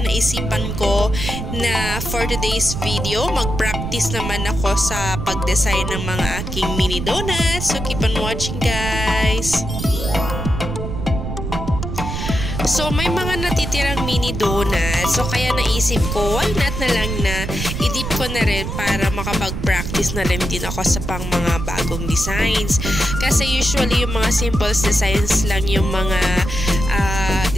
naisipan ko na for today's video, mag-practice naman ako sa pag-design ng mga aking mini donuts. So keep on watching, guys! So, may mga natitirang mini donuts. So, kaya naisip ko, why not na lang na i-dip ko na rin para makapag-practice na rin din ako sa pang mga bagong designs. Kasi usually, yung mga simple designs lang yung mga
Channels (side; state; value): right; noise; rumble, 5 dB below the sound